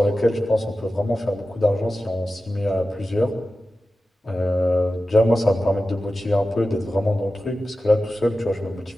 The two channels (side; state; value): both; normal; correlation 0.94